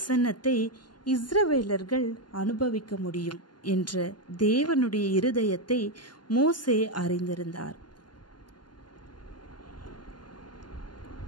இஸ்ரவேலர்கள் அனுபவிக்க முடியும் என்ற தேவனுடைய இருதயத்தை மோசே அறிந்திருந்தார்.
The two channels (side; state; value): right; late; 0.71 ms